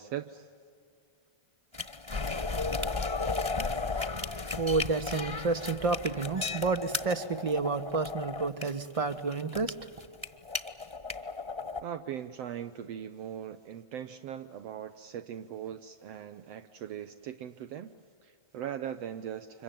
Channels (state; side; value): late; left; 1.3 ms